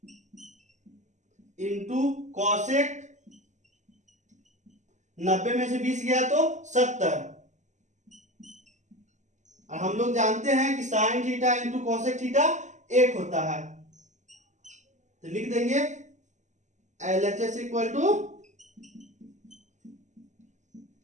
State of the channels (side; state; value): left; late; 0.34 ms